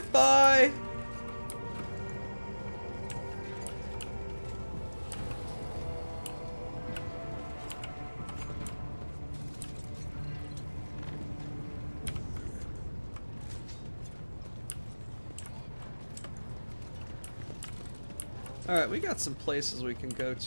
Alright, we got some places we can go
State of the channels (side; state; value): both; inverted; correlation -1.00